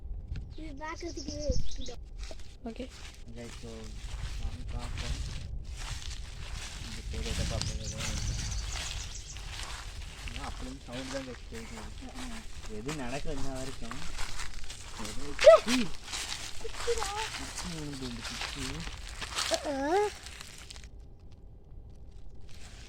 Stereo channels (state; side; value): identical; both; correlation 1.00